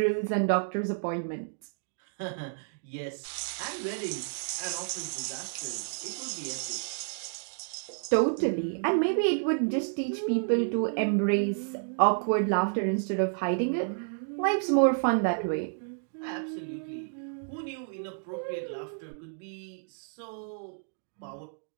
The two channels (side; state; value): left; silent; digital silence